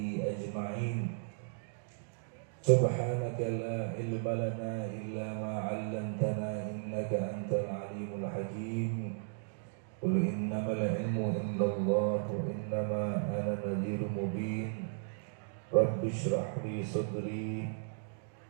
ajma'in. Subhanaka la ilma lana illa ma 'allamtana innaka antal alimul hakim. Qul innamal ilmu indallah wa innama ana nadhirun mubin. Rabbi shrah li sadri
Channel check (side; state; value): left; silent; digital silence